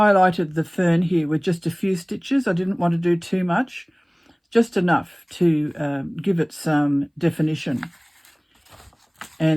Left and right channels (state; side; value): identical; both; correlation 1.00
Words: the fern here with just a few stitches. I didn't want to do too much, just enough to give it some definition.